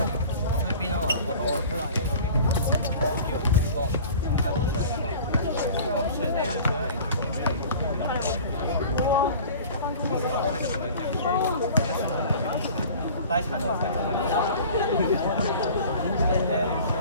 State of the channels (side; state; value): both; inverted; correlation -0.43